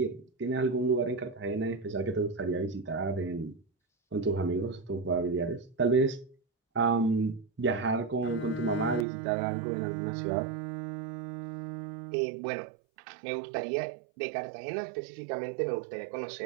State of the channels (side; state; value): left; drops out; at 9.1 s